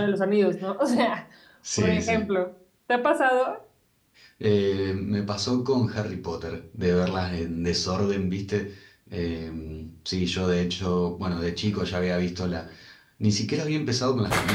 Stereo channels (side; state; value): both; identical; correlation 1.00